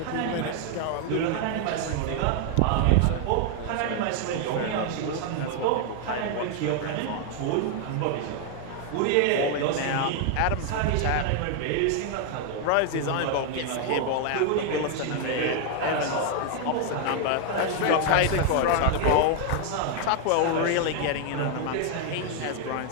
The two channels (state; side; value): different; both; correlation 0.00